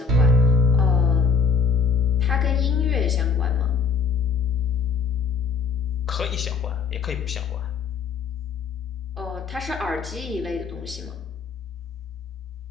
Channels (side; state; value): right; quieter; 5.2 dB